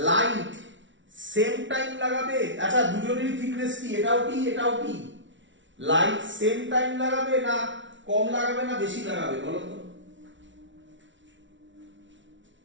লাইট সেম টাইম লাগাবে। আচ্ছা, দুজনেরই থিকনেস কি? এটাও টি, এটাও টি। লাইট সেম টাইম লাগাবে না কম লাগাবে না বেশি লাগাবে বলো তো?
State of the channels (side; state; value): left; late; 0.55 ms